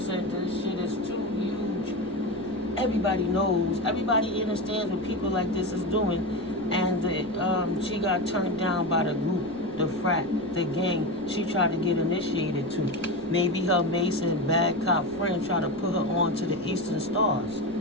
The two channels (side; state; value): right; noise; rumble, 21 dB below the sound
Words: said this shit is too huge. Everybody knows. Everybody understands what people like this is doing. And she got turned down by the group, the frat, the gang she tried to get initiated to. Maybe her Mason bad cop friend tried to put her on to the Eastern Stars